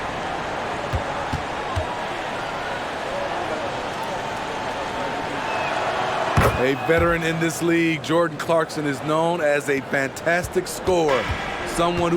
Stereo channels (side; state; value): both; identical; correlation 1.00